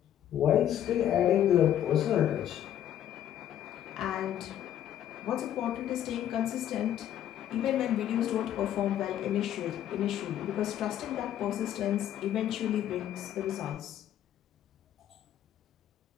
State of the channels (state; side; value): quieter; right; 11.0 dB